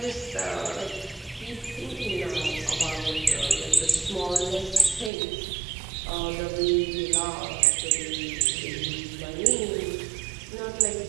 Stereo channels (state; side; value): drops out; left; at 5.1 s